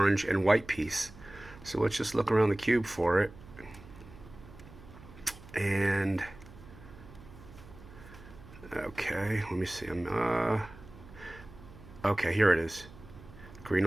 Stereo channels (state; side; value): noise; right; hum, 19 dB below the sound